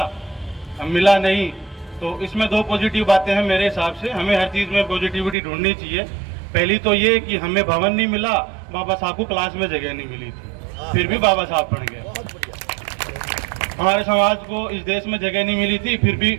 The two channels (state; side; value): drops out; left; at 5.4 s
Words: मिला नहीं, तो इसमें दो पॉजिटिव बातें हैं मेरे हिसाब से। हमें हर चीज़ में पॉजिटिविटी ढूंढनी चाहिए। पहली तो ये कि हमें भवन नहीं मिला, बाबा साहब को क्लास में जगह नहीं मिली थी, फिर भी बाबा साहब बन गए। हमारे समाज को इस देश में जगह नहीं मिली थी, फिर भी